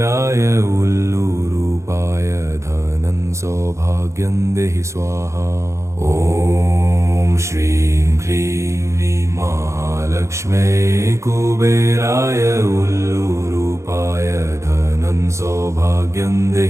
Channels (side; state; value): left; late; 0.14 ms